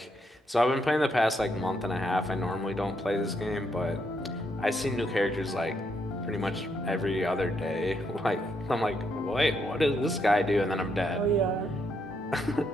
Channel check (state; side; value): normal; both; correlation 0.77